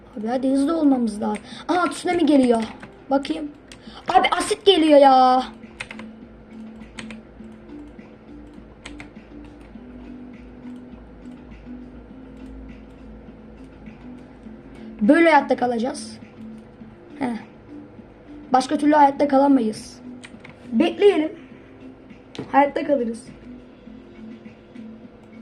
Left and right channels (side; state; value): both; identical; correlation 1.00